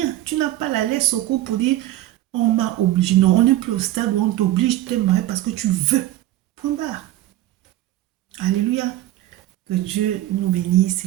Tu n'as pas la laisse au cou pour dire on m'a obligé. Non, on n'est plus au stade où on t'oblige de te marier parce que tu veux. Point barre. Alléluia. Que Dieu nous bénisse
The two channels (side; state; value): left; quieter; 14.7 dB